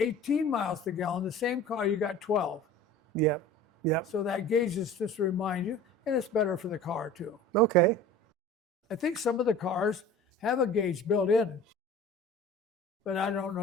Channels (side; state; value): both; normal; correlation 0.41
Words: miles per gallon. The same car, you got 12. Yep. Yep. So that gauge is just to remind you, and it's better for the car too. Okay. I think some of the cars have a gauge built in, but I don't know